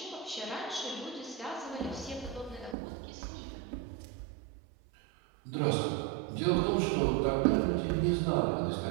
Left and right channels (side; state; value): left; drops out; at 2.8 s